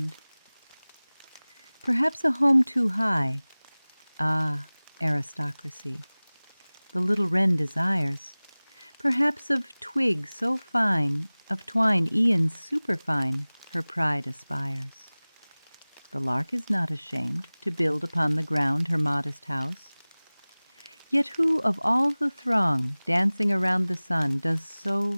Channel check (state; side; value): inverted; both; correlation -1.00